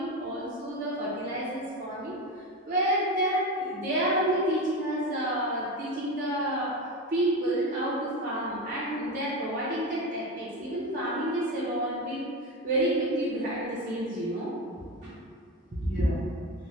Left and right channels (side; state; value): both; normal; correlation 0.21